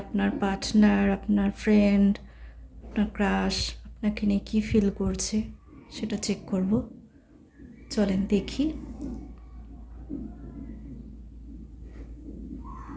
আপনার পার্টনার, আপনার ফ্রেন্ড, আপনার ক্রাশ আপনাকে নিয়ে কী ফিল করছে সেটা চেক করব। চলেন দেখি।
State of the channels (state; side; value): identical; both; correlation 1.00